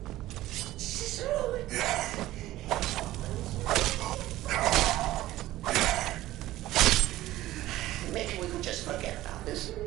Maybe we could just forget about this.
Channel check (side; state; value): left; quieter; 15.7 dB